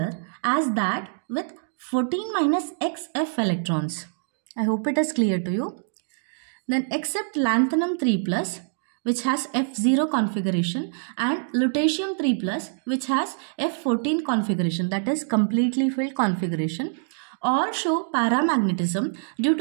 as that with 14 minus X F electrons. I hope it is clear to you. Then except lanthanum 3+, which has F0 configuration, and lutetium 3+, which has F14 configuration, that is completely filled configuration, all show paramagnetism due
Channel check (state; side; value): silent; left; digital silence